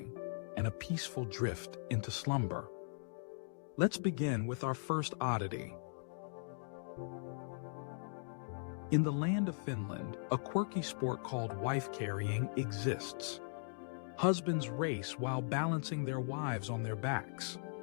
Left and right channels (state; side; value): silent; right; digital silence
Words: and a peaceful drift into slumber. Let's begin with our first oddity. In the land of Finland, a quirky sport called wife-carrying exists. Husbands race while balancing their wives on their backs.